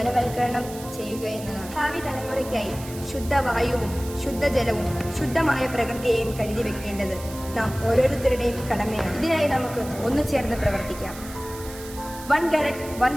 ചെയ്യുക എന്നതാണ്. ഭാവി തലമുറയ്ക്കായി ശുദ്ധവായുവും ശുദ്ധജലവും ശുദ്ധമായ പ്രകൃതിയെയും കരുതി വെക്കേണ്ടത് നാം ഓരോരുത്തരുടെയും കടമയാണ്. ഇതിനായി നമുക്ക് ഒന്നുചേർന്ന് പ്രവർത്തിക്കാം. 1 Carrot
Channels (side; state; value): right; noise; hiss, 15 dB below the sound